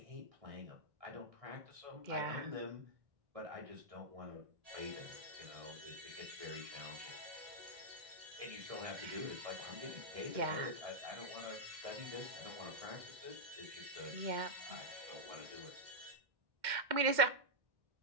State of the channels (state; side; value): late; left; 2.1 ms